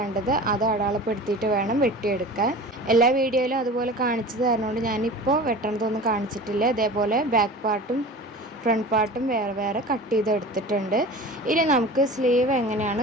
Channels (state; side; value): normal; both; correlation 0.37